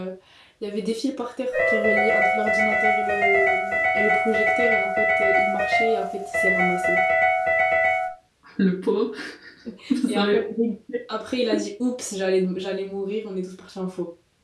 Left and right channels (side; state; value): both; identical; correlation 1.00